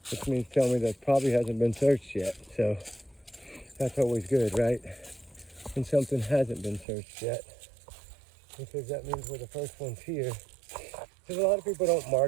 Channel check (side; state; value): left; drops out; at 6.9 s